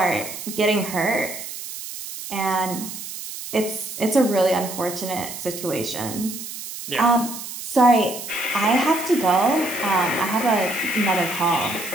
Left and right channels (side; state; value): right; noise; hiss, 9 dB below the sound